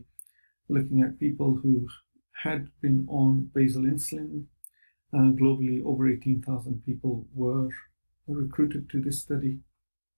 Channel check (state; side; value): inverted; both; correlation -1.00